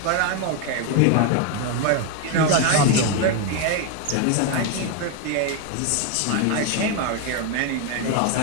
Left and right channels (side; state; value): both; different; correlation 0.01